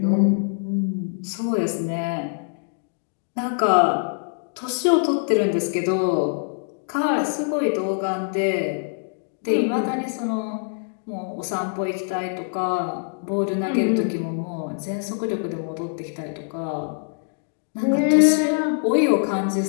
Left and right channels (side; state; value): right; silent; digital silence